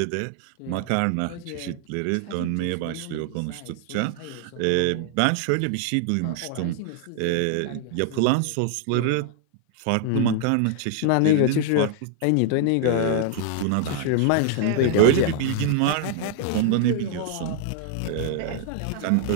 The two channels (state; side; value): different; both; correlation 0.00